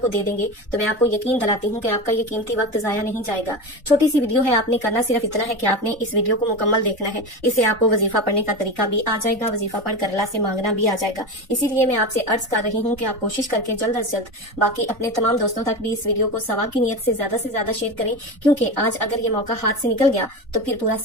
دے دیں گے تو میں آپ کو یقین دلاتی ہوں کہ آپ کا یہ قیمتی وقت ضائع نہیں جائے گا۔ چھوٹی سی ویڈیو ہے، آپ نے کرنا صرف اتنا ہے کہ آپ نے اس ویڈیو کو مکمل دیکھنا ہے، اس سے آپ کو وظیفہ پڑھنے کا طریقہ بھی آ جائے گا، وظیفہ پڑھ کر اللہ سے مانگنا بھی آ جائے گا۔ اسی لیے میں آپ سے عرض کر رہی ہوں کہ آپ کوشش کر کے جلد از جلد باقی اپنے تمام دوستوں تک بھی اس ویڈیو کو ثواب کی نیت سے زیادہ شیئر کریں، کیونکہ آج اگر یہ موقع ہاتھ سے نکل گیا تو پھر پورا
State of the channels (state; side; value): normal; both; correlation 0.23